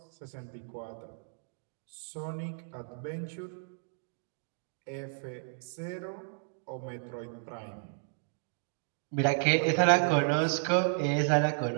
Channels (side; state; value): left; silent; digital silence